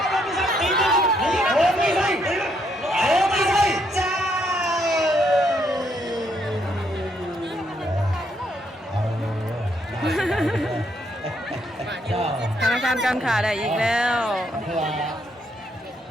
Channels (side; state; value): both; normal; correlation 0.73